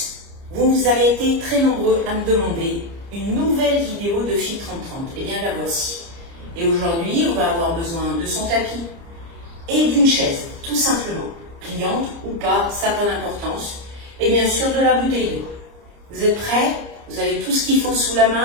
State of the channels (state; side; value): late; left; 30 ms